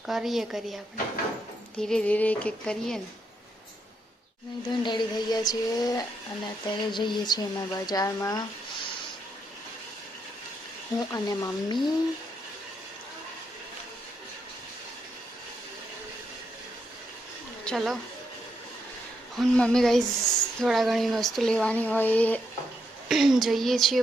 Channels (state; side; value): normal; both; correlation 0.79